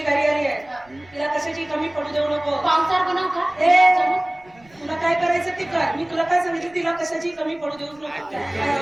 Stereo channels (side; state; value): right; noise; rumble, 29 dB below the sound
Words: घरी आली आहे तिला कशाची कमी पडू देऊ नको पावसार बनव का तुला काय करायचं ते कर मी तुला काय सांगितलं तिला कशाची कमी पडू देऊच नको काय